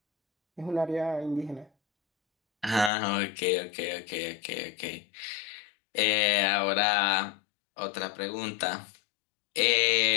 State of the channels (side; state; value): right; drops out; at 2.9 s